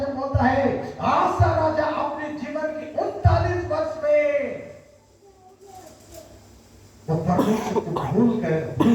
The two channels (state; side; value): identical; both; correlation 1.00